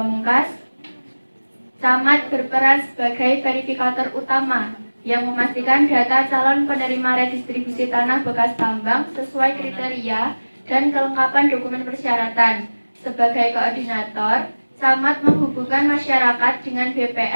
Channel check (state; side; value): inverted; both; correlation -1.00